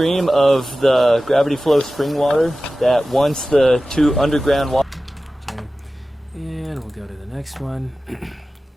of the gravity flow spring water that once the two underground water. Okay. And we'll go to the next one.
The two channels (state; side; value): normal; both; correlation 0.95